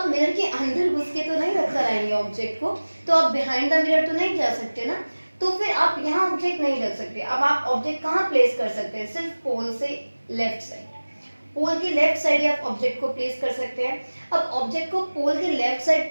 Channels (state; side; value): inverted; both; correlation -1.00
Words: मिरर के अंदर घुस के तो नहीं रख कर आएंगे ऑब्जेक्ट को, तो आप बिहाइंड द मिरर तो नहीं जा सकते ना, तो फिर आप यहाँ ऑब्जेक्ट नहीं रख सकते। अब आप ऑब्जेक्ट कहाँ प्लेस कर सकते हैं? सिर्फ पोल से लेफ्ट साइड, पोल के लेफ्ट साइड आप ऑब्जेक्ट को प्लेस कर सकते हैं। अब ऑब्जेक्ट को पोल के लेफ्ट साइड